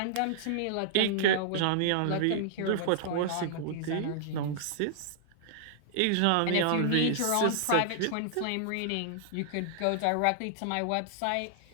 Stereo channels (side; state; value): both; different; correlation -0.01